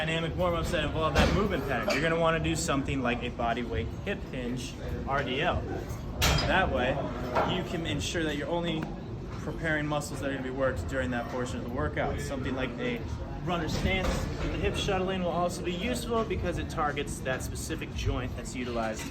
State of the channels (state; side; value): identical; both; correlation 1.00